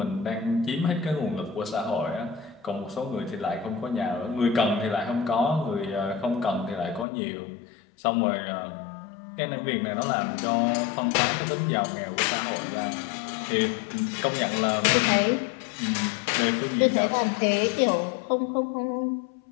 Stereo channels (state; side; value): drops out; right; at 7.1 s